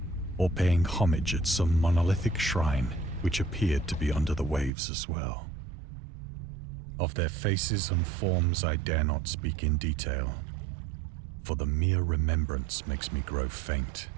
or paying homage at some monolithic shrine which appeared to be under the waves as well. Of their faces and forms I dare not speak in detail, for the mere remembrance makes me grow faint.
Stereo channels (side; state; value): left; drops out; at 4.7 s